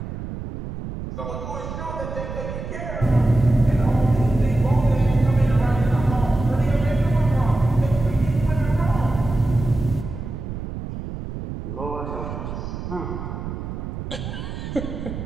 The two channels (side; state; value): right; noise; rumble, 7 dB below the sound